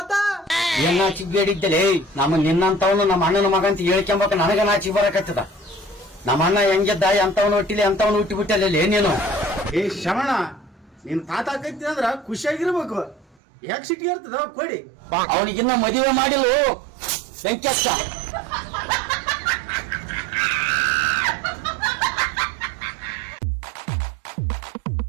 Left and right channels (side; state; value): left; drops out; at 13.4 s